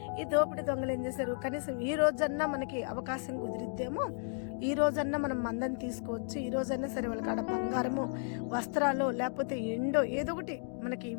ఈ దోపిడి దొంగలు ఏం చేశారు, కనీసం ఈ రోజన్నా మనకి అవకాశం కుదిరిద్దేమో, ఈ రోజన్నా మనం మందని తీసుకోవచ్చు, ఈ రోజన్నా సరే వాళ్ళ కాడ బంగారము, వస్త్రాలు, లేకపోతే ఎండో ఏదో ఒకటి మనకి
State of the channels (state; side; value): silent; right; 55 dB below the other